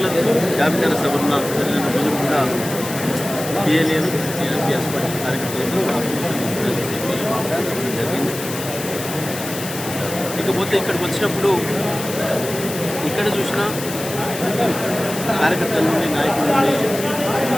జాబితా సభన్న జరిగిన రోజు కూడా పిఎల్ఏను టీఆర్పీఎస్ పార్టీ కార్యకర్తలు జరిగింది. ఇకపోతే ఇక్కడికి వచ్చినప్పుడు ఇక్కడ చూసినా కార్యకర్తల నుండి నాయకుల నుండి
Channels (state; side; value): noise; left; hiss, 9 dB below the sound